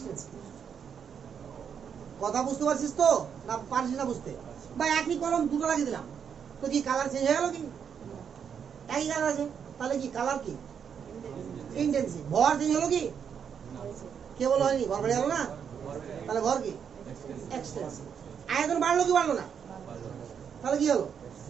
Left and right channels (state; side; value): quieter; left; 7.5 dB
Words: কথা বুঝতে পারছিস তো, না পারছিস না বুঝতে? বা একই কলম দুটো লাগিয়ে দিলাম, তো কি কালার চেঞ্জ হয়ে গেল কি? একই কালার আছে, তাহলে কি কালার কি? ইন্টেন্সিভ। ভর চেঞ্জ হলো কি? কে বলো হয়নি? ভর বেড়ে গেল না, তাহলে ভর কি? এক্সটেন্সিভ। আয়তন বাড়লো কি বাড়লো না? তাহলে কি হলো?